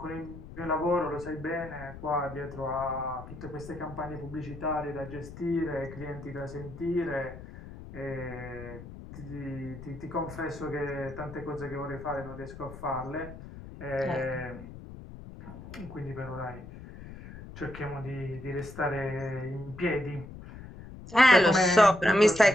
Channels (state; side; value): noise; left; rumble, 14 dB below the sound